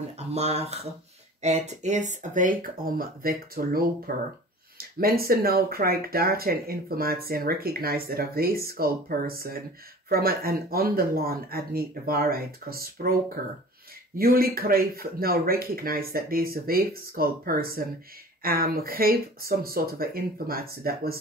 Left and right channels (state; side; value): normal; both; correlation 0.42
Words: a maag. Het is een week om weg te lopen. Mensen nou krijgen data en informatie en recognize that a weeskal person from an underland had niet de waarheid gesproken. Jullie krijgen nou recognize that deze weeskal person gave some sort of informatie that